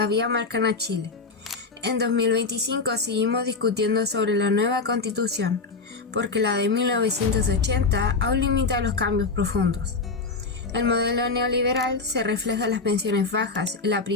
marcan a Chile. En 2025 seguimos discutiendo sobre la nueva constitución, porque la de 1980 aún limita los cambios profundos. El modelo neoliberal se refleja en las pensiones bajas, en la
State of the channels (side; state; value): right; quieter; 4.2 dB